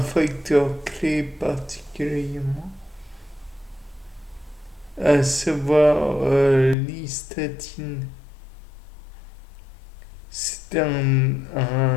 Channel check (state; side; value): drops out; right; at 6.8 s